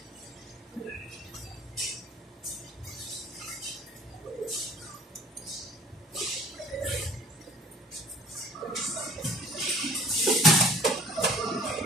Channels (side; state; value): both; normal; correlation 0.50